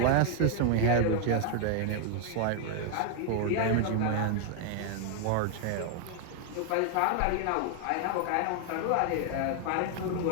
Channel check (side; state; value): both; different; correlation 0.00